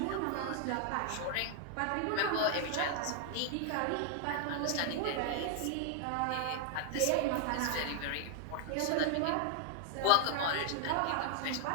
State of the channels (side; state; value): both; different; correlation 0.00